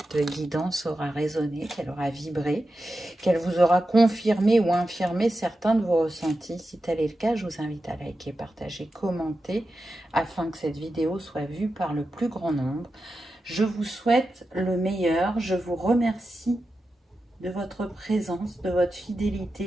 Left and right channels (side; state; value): both; normal; correlation 0.91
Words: guidance aura résonné, qu'elle aura vibré, qu'elle vous aura confirmé ou infirmé certains de vos ressentis. Si tel est le cas, je vous invite à liker, partager, commenter, afin que cette vidéo soit vue par le plus grand nombre. Je vous souhaite le meilleur. Je vous remercie de votre présence, de votre